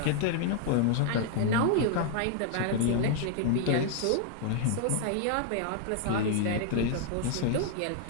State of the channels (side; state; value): both; different; correlation 0.00